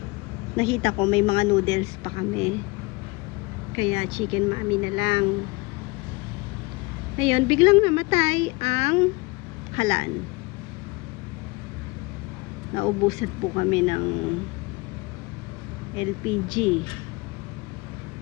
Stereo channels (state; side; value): quieter; right; 25.1 dB